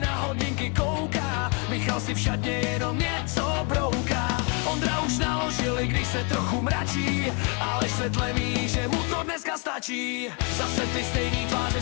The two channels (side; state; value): right; quieter; 33.4 dB